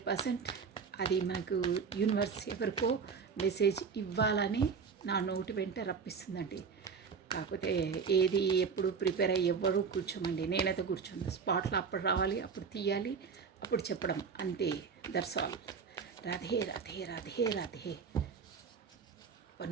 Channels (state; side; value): quieter; left; 5.8 dB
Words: అది మనకు యూనివర్స్ ఎవరికో మెసేజ్ ఇవ్వాలని నా నోటి వెంట రప్పిస్తుందండి. కాకపోతే ఏది ఎప్పుడు ప్రిపేర్ అయ్యి ఎవ్వరూ కూర్చోమండి. నేనైతే కూర్చోను. స్పాట్లో అప్పుడు రావాలి, అప్పుడు తీయాలి, అప్పుడు చెప్పడం అంతే. That's all. Radhe Radhe Radhe Radhe. One